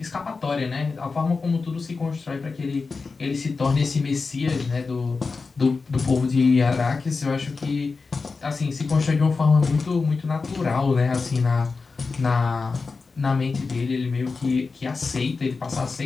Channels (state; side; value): quieter; right; 4.3 dB